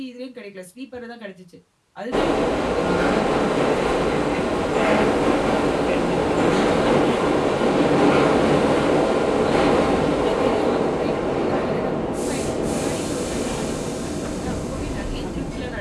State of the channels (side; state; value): both; identical; correlation 1.00